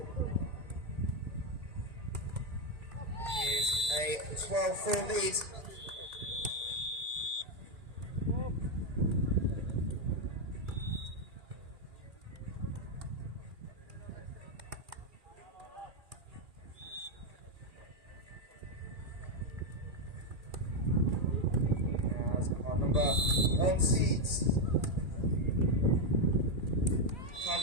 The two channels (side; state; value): left; late; 2.4 ms